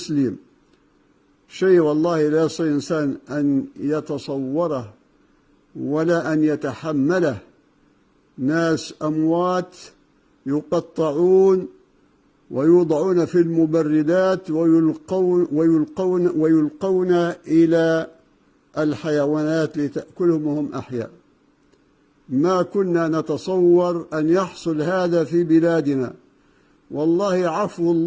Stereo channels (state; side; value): identical; both; correlation 1.00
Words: شيء والله لا يستطيع إنسان أن يتصوره ولا أن يتحمله. ناس أموات يقطعون ويوضعون في المبردات ويلقون إلى الحيوانات لتأكلهم وهم أحياء. ما كنا نتصور أن يحصل هذا في بلادنا. والله عفو